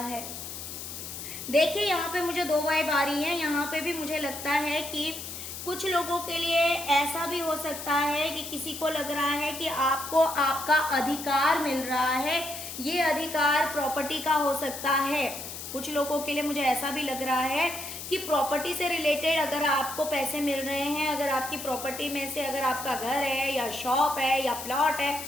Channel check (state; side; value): noise; left; hiss, 9 dB below the sound